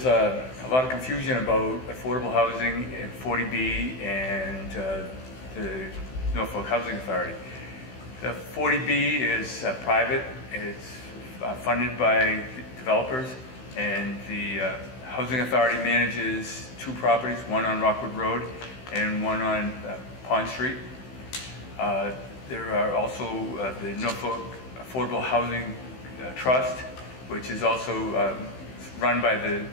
a lot of confusion about affordable housing and 40B and the Norfolk Housing Authority. The 40B is private. It's funded by developers, and the Housing Authority manages two properties, one on Rockwood Road and one on Pond Street. There are also the Norfolk Affordable Housing Trust, which is also run by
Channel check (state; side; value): late; right; 16 ms